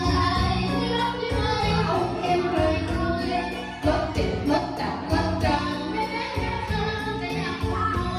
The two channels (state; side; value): identical; both; correlation 1.00